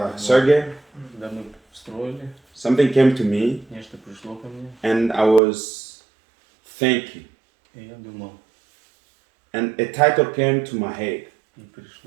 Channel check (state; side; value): drops out; left; at 5.4 s